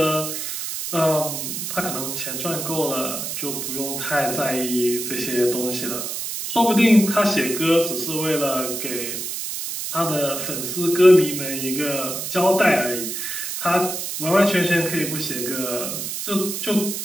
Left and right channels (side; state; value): right; noise; hiss, 4 dB below the sound